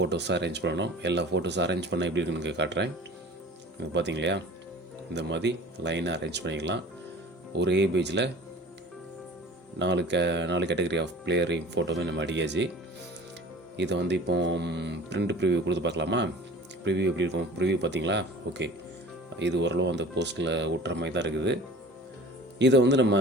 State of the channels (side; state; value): both; normal; correlation 0.42